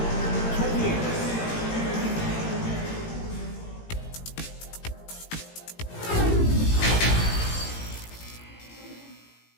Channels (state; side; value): late; right; 18 ms